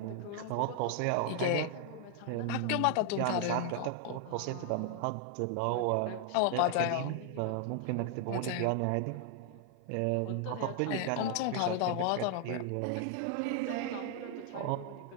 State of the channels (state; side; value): different; both; correlation 0.00